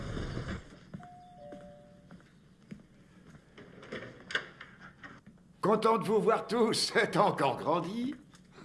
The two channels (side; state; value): both; identical; correlation 1.00